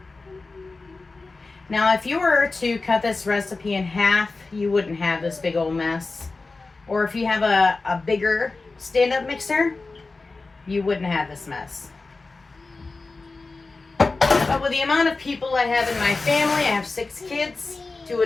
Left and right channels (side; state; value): right; quieter; 3.7 dB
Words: Now, if you were to cut this recipe in half, you wouldn't have this big old mess. Or if you have a bigger stand-up mixer, you wouldn't have this mess. But with the amount of people I have in my family, I have 6 kids, 2